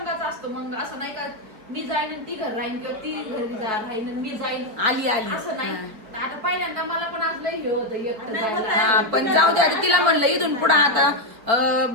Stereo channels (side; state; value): left; late; 4.5 ms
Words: असतो. मग असं नाही का मी जाईन आणि ती घर राहीन किंवा ती घरी राहीन आणि मी जाईन आली असं नाही. आता पहिल्यांदा मला पण आज लई हे होतं एकटं जायला. पण जाऊ दे, तिला म्हणलं इथून पुढे